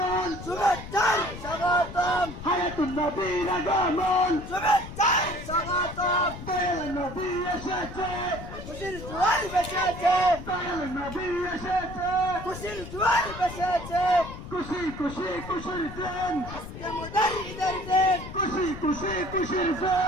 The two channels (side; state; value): left; noise; rumble, 11 dB below the sound